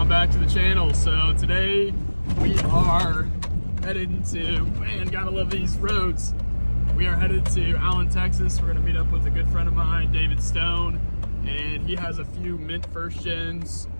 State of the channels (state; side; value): inverted; both; correlation -1.00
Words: back to the channel. So today we are headed to, man, gotta love these roads. We are headed to Allen, Texas. We're gonna meet up with a good friend of mine, David Stone, and he has a few mint first gens.